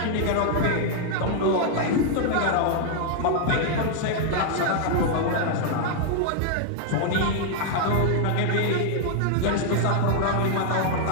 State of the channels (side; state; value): both; different; correlation 0.00